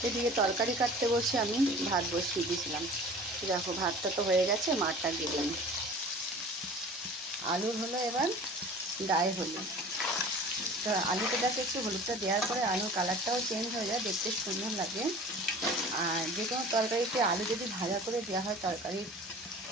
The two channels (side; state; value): both; normal; correlation 0.42